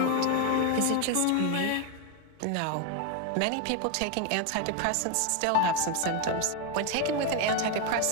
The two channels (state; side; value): different; both; correlation 0.01